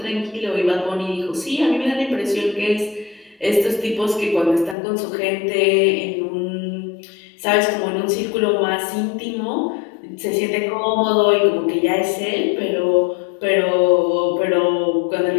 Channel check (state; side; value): drops out; right; at 4.8 s